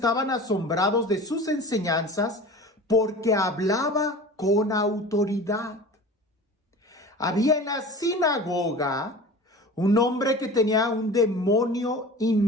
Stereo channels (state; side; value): normal; both; correlation 0.37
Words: asombrados de sus enseñanzas porque hablaba con autoridad. Había en la sinagoga un hombre que tenía un demonio